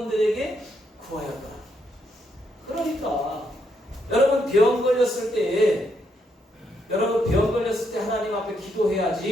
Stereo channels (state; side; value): normal; both; correlation 0.77